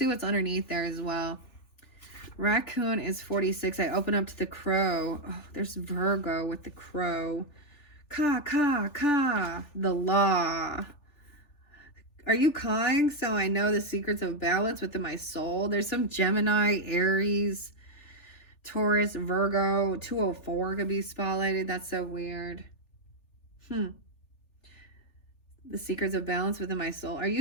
what's underneath there as well. Raccoon is 46. I open up to the crow. Oh, there's Virgo with the crow. Ka, ka, ka. The law. Are you cawing? So I know the secrets of balance within my soul. There's some Gemini, Aries, Taurus, Virgo. 204 could be spotlighted. That's so weird. The secrets of balance within my soul. Are you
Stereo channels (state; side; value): late; right; 3.4 ms